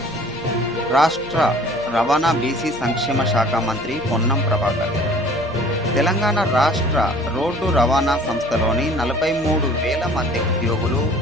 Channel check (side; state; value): left; noise; hum, 22 dB below the sound